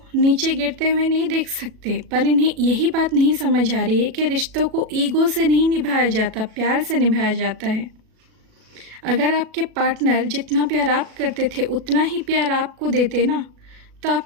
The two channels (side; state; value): left; late; 37 ms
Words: नीचे गिरते हुए नहीं देख सकते, पर इन्हें यही बात नहीं समझ आ रही है कि रिश्तों को ईगो से नहीं निभाया जाता, प्यार से निभाया जाता है। अगर आपके पार्टनर जितना प्यार आप करते थे उतना ही प्यार आपको देते ना, तो